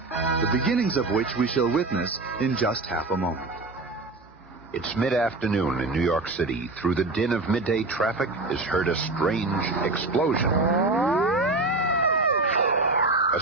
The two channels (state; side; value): quieter; left; 3.2 dB